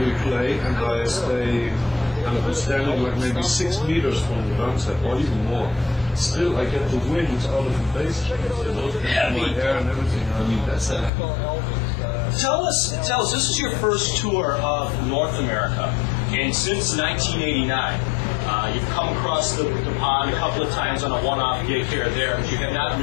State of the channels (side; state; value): right; drops out; at 11.1 s